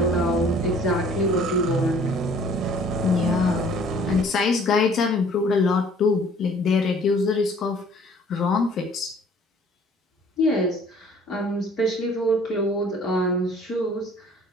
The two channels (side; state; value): both; normal; correlation 0.54